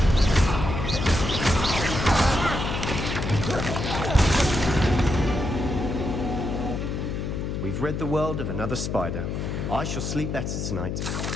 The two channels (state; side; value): noise; left; hum, 3 dB below the sound